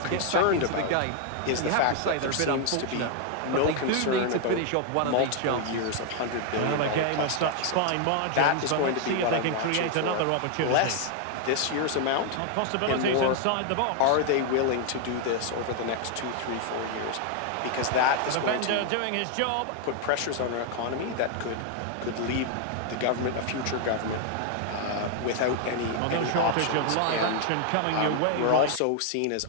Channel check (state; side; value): different; both; correlation 0.00